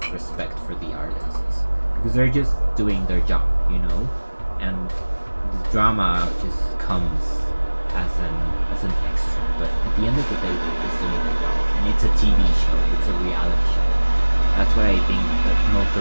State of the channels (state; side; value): inverted; both; correlation -1.00